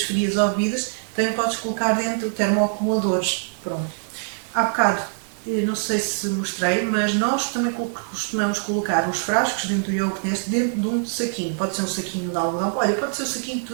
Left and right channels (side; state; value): left; silent; digital silence